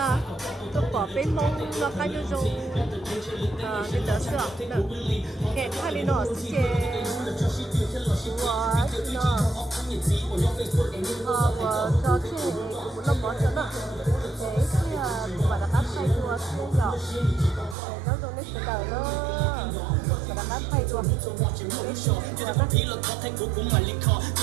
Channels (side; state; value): left; drops out; at 17.8 s